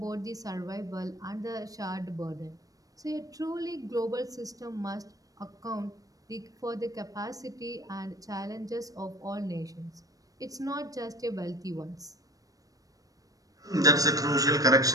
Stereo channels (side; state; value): left; late; 0.17 ms